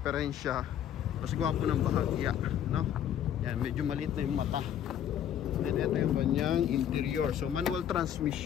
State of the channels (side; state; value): right; quieter; 10.0 dB